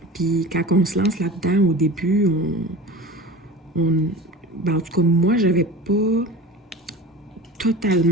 Puis quand on se lance là-dedans, au début, ben, en tout cas, moi, j'avais pas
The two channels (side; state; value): both; normal; correlation 0.36